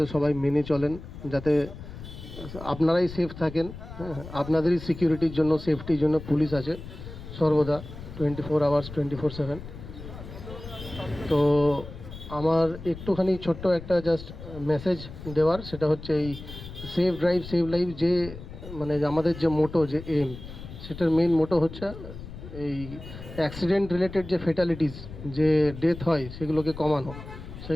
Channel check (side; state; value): left; noise; rumble, 13 dB below the sound